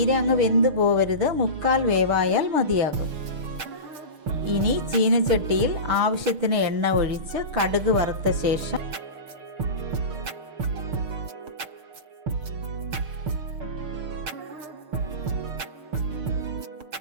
അങ്ങ് വെന്ത് പോവരുത്, മുക്കാൽ വേവായാൽ മതിയാകും. ഇനി ചീനച്ചട്ടിയിൽ ആവശ്യത്തിന് എണ്ണ ഒഴിച്ച് കടുക് വറുത്ത ശേഷം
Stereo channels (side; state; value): left; late; 6.6 ms